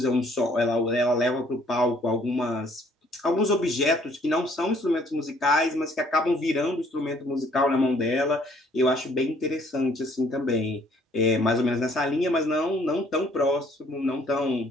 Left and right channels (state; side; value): normal; both; correlation 0.61